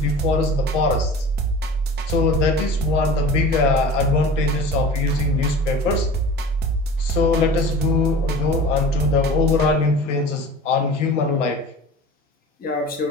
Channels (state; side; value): normal; both; correlation 0.39